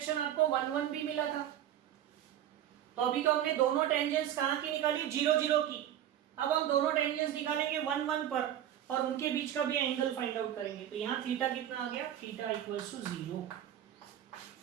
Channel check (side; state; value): left; quieter; 11.1 dB